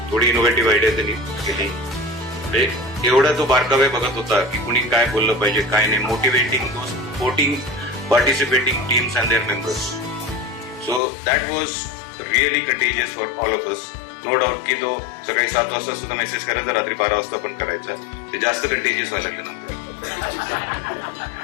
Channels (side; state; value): right; drops out; at 11.0 s